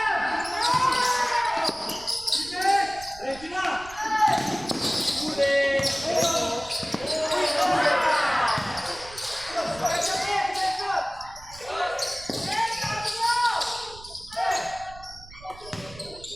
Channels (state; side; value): noise; right; rumble, 19 dB below the sound